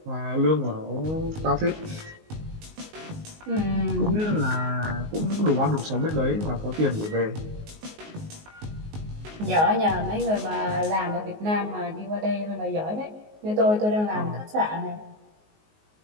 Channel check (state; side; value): late; left; 19 ms